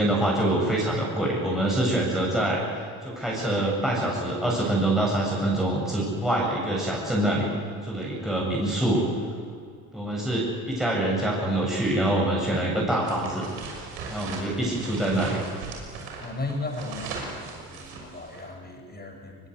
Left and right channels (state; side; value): normal; both; correlation 0.52